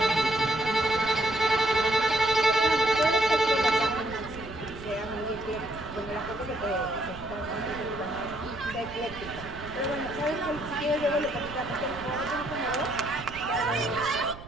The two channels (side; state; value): right; noise; rumble, 14 dB below the sound